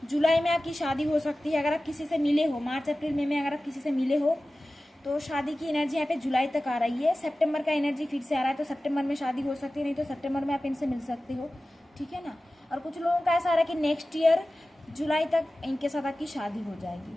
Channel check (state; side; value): normal; both; correlation 0.96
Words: जुलाई में आपकी शादी हो सकती है। अगर आप किसी से मिले हो मार्च अप्रैल मई में, अगर आप किसी से मिले हो तो शादी की एनर्जी यहाँ पे जुलाई तक आ रही है। सितंबर का एनर्जी फिर से आ रहा है, तो सितंबर में शादी हो सकती है, नहीं तो सितंबर में आप इनसे मिल सकते हो। ठीक है ना। और कुछ लोगों का ऐसा आ रहा है कि नेक्स्ट ईयर जुलाई तक इनके साथ आपकी शादी हो जाएगी।